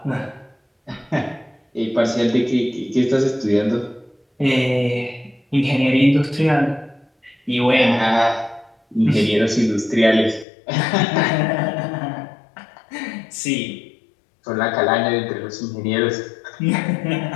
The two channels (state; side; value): drops out; right; at 10.5 s